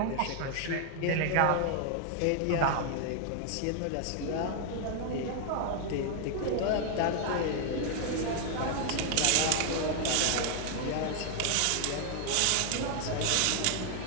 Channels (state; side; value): different; both; correlation 0.00